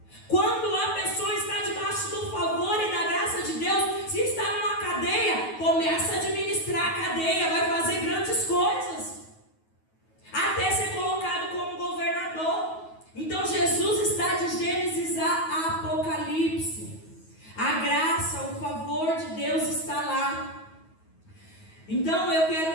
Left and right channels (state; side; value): late; right; 9.3 ms